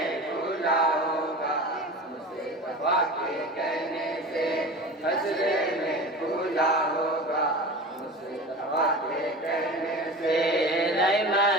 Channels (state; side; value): normal; both; correlation 0.33